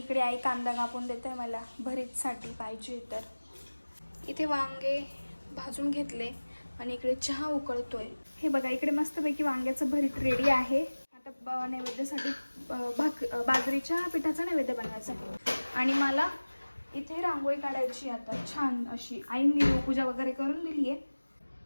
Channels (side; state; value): both; inverted; correlation -1.00